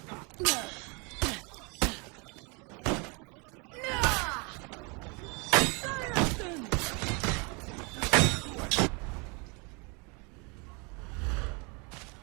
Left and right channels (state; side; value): quieter; left; 31.5 dB